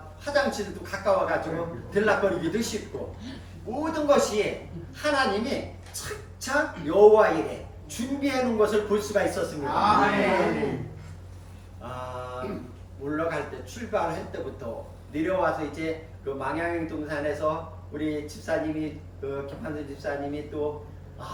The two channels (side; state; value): both; identical; correlation 1.00